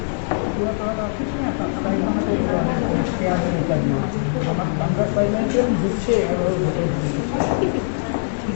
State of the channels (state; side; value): silent; right; digital silence